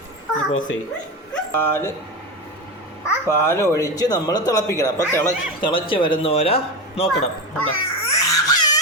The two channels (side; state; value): both; normal; correlation 0.19